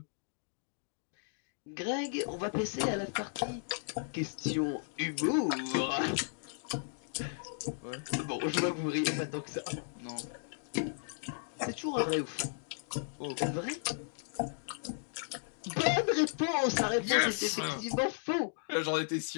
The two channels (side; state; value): right; silent; digital silence